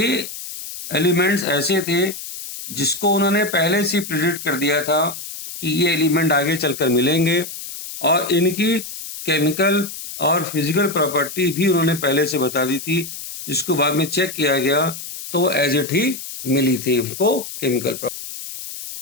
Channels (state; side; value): noise; left; hiss, 10 dB below the sound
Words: एलिमेंट्स ऐसे थे जिसको उन्होंने पहले से प्रिडिक्ट कर दिया था कि ये एलिमेंट आगे चलकर मिलेंगे, और इनकी केमिकल और फिजिकल प्रॉपर्टी भी उन्होंने पहले से बता दी थी, जिसको बाद में चेक किया गया तो वो एज इट ही मिली थी उनको केमिकल प्रॉपर्टी।